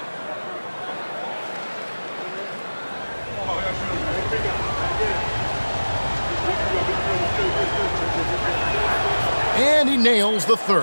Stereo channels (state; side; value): inverted; both; correlation -1.00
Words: And he nails the